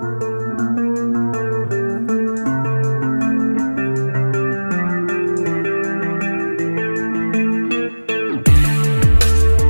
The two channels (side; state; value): both; inverted; correlation -1.00